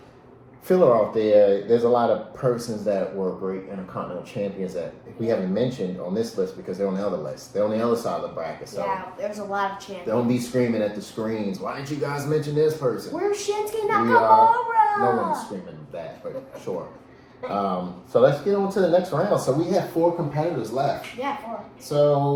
filler out there. There's a lot of persons that were great Intercontinental Champions that we haven't mentioned on this list because they're on the other list. They're on the other side of the bracket. So yeah, there's a lot of champions. don't be screaming at the screens. Why didn't you guys mention this person? Where's Shinsuke Nakamura? No one's screaming that, but sure. So let's get on to the next round. So we have 4 competitors left. Yeah, 4.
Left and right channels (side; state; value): both; identical; correlation 1.00